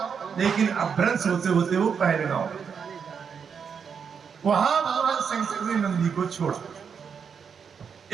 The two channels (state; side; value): quieter; left; 6.6 dB